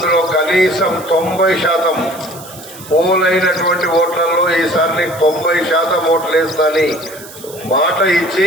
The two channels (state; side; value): noise; right; hiss, 17 dB below the sound